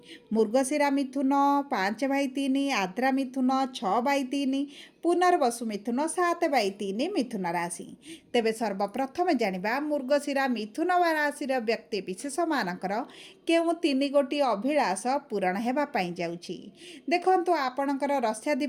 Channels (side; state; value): both; identical; correlation 1.00